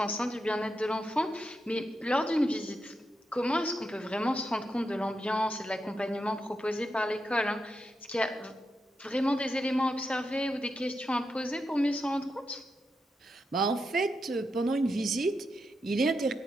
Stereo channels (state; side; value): normal; both; correlation 0.85